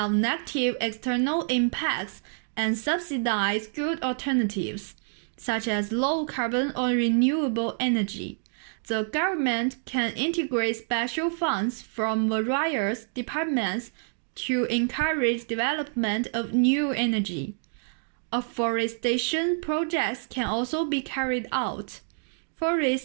negative external impacts and subsidize good alternatives, such as low carbon or renewable energy. The government can integrate special funds from various departments to encourage development of new energy. Afforestation projects can also be carried out.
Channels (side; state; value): left; silent; digital silence